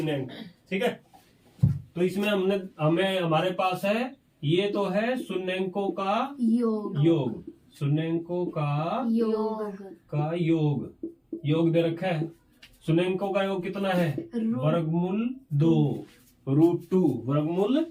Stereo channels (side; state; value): both; identical; correlation 1.00